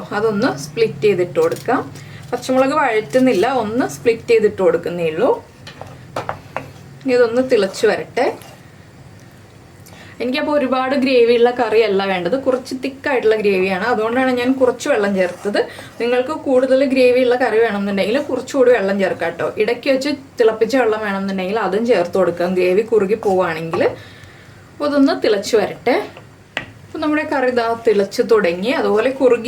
അതൊന്ന് സ്പ്ലിറ്റ് ചെയ്തിട്ട് കൊടുക്കാം. പച്ചമുളക് വഴറ്റുന്നില്ല, ഒന്ന് സ്പ്ലിറ്റ് ചെയ്തിട്ട് കൊടുക്കുന്നേ ഉള്ളൂ. ഇതൊന്ന് തിളച്ച് വരട്ടെ. എനിക്കപ്പോൾ ഒരുപാട് ഗ്രേവിയുള്ള കറിയല്ല വേണ്ടത്, കുറച്ച് തിക്കായിട്ടുള്ള ഗ്രേവിയാണ്. അതുകൊണ്ടാണ് ഞാൻ കുറച്ച് വെള്ളം ചേർത്തത്. നിങ്ങൾക്ക് കൂടുതൽ ഗ്രേവിയുള്ള കറി വേണമെന്നുണ്ടെങ്കിൽ കുറച്ചുകൂടി വെള്ളം ചേർക്കാം കേട്ടോ. ഇടയ്ക്ക് വെച്ച് തിളപ്പിച്ച വെള്ളം വേണമെന്നുണ്ടെങ്കിൽ അതും ചേർത്ത് കൊടുക്കാം, ഗ്രേവി കുറുകി പോവുകയാണെങ്കിൽ. അപ്പോൾ അതൊന്ന് തിളച്ച് വരട്ടെ. അപ്പോൾ നമ്മുടെ കറി ഇതാ തിളച്ച് തുടങ്ങി, അതുപോലെ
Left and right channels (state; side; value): identical; both; correlation 1.00